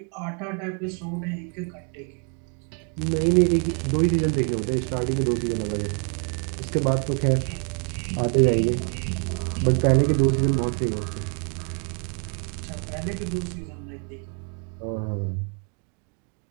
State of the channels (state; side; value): quieter; left; 39.1 dB